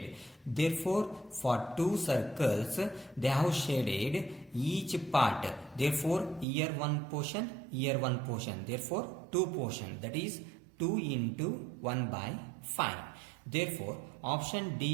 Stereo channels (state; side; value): drops out; left; at 6.5 s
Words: Therefore, for two circles, they have shaded each part. Therefore, here one portion, here one portion. Therefore, two portion. That is 2 into 1 by 5. Therefore, option